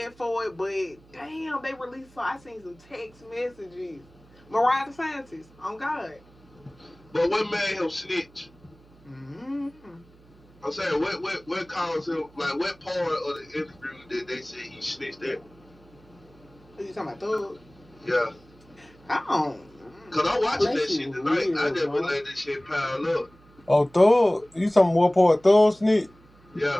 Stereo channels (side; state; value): right; noise; hum, 27 dB below the sound